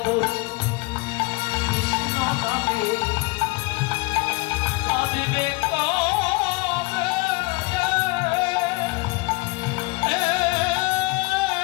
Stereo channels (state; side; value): quieter; right; 25.6 dB